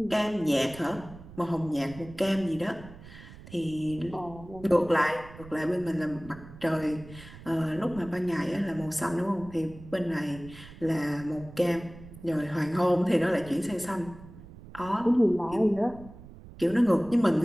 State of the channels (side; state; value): right; noise; rumble, 17 dB below the sound